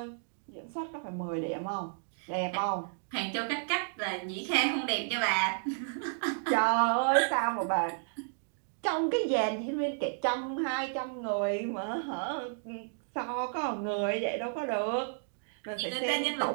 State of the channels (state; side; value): silent; left; digital silence